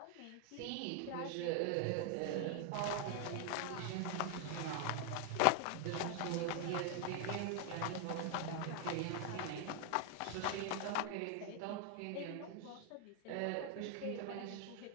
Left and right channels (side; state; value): both; different; correlation 0.00